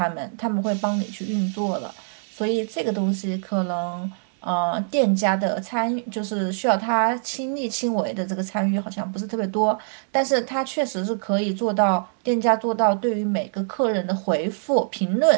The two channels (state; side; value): silent; left; digital silence